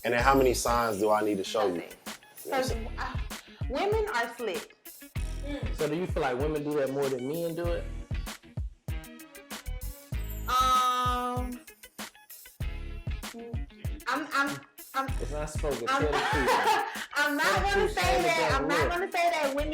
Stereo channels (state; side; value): identical; both; correlation 1.00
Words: And then how many signs do I need to show you? Women are slick. So do you feel like women do that more than men do it? It's not spoken. I'm not gonna say that. I'm not gonna say that